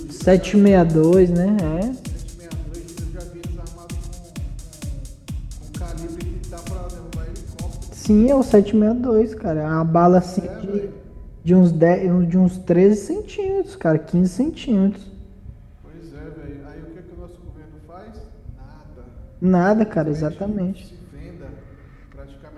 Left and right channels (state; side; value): identical; both; correlation 1.00